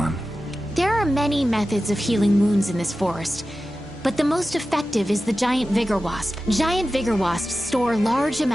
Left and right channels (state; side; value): normal; both; correlation 0.94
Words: There are many methods of healing wounds in this forest, but the most effective is the giant vigor wasp. Giant vigor wasps store large